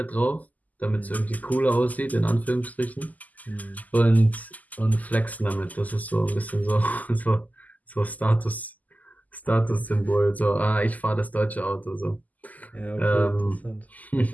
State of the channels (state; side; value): late; right; 0.079 ms